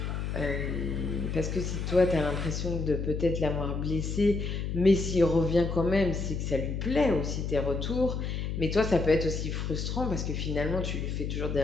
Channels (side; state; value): left; noise; hum, 3 dB below the sound